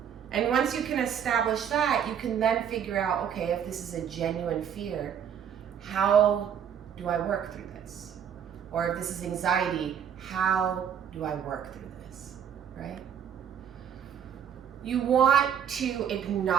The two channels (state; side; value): quieter; left; 8.4 dB